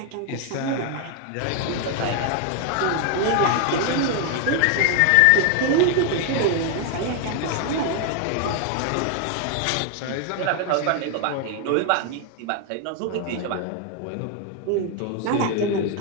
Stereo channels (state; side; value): different; both; correlation 0.01